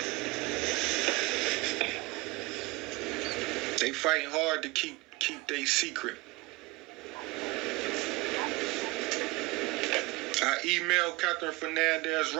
They fighting hard to keep their secret. I emailed Kathryn Fernandez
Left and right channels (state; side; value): quieter; left; 22.3 dB